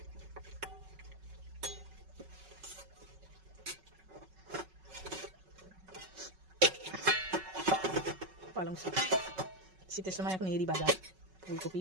পালং শাক শীতের সময় এখন এরই বাজার।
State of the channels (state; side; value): late; left; 5.3 ms